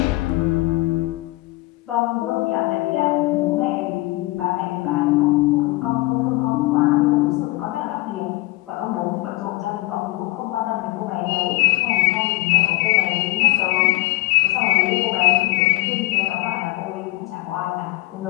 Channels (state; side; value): quieter; right; 20.1 dB